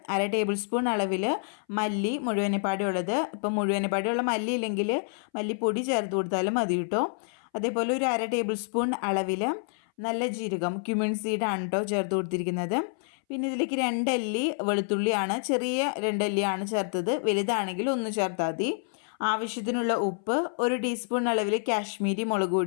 1/2 ടേബിൾ സ്പൂൺ അളവിൽ മല്ലി മുഴുവനെപ്പാടിയുള്ളത്. ഇപ്പോൾ മുഴുവനെപ്പാടിയുള്ള മല്ലി ഇല്ലെങ്കിൽ മല്ലിപ്പൊടി ചേർത്ത് കൊടുത്താലും മതി കേട്ടോ. അതേപോലെ ഒരു 1/2 ടേബിൾ സ്പൂൺ അളവിൽ നല്ല ജീരകം ക്യുമിൻ സീഡാണ് കേട്ടോ ചേർത്ത് കൊടുത്തിരിക്കുന്നത്. പിന്നെ ഇതിലേക്ക് 2 അല്ലി വെളുത്തുള്ളിയാണ്, ചെറിയ 2 അല്ലിയാണ് ചേർത്തത്. വലുതാണെങ്കിൽ 1 ചേർത്താൽ മതി. ആവശ്യത്തിനുള്ള ഉപ്പ്, 1 ടീസ്പൂൺ അളവിൽ കാശ്മീരി മുളക്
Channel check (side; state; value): right; silent; 59 dB below the other